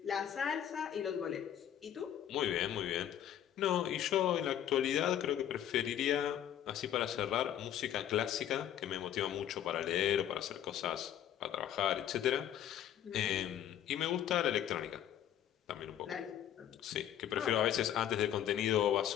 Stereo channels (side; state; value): right; quieter; 10.7 dB